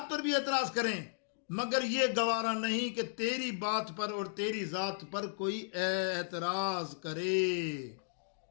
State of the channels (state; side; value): silent; right; digital silence